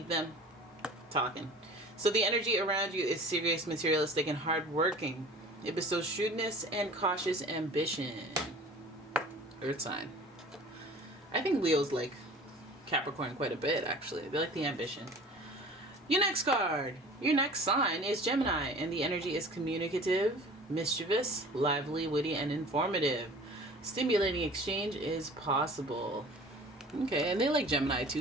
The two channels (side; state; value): both; normal; correlation 0.43